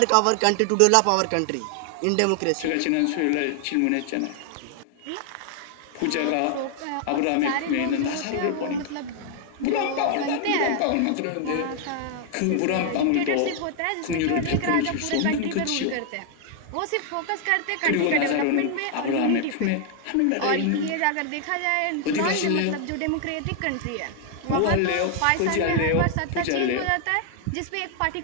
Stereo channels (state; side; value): different; both; correlation 0.00